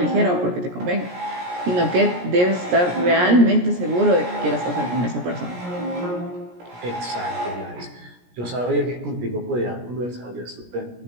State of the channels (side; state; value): left; late; 17 ms